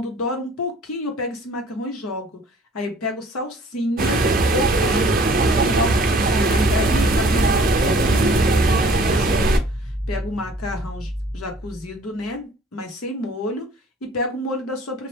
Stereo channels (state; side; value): normal; both; correlation 0.53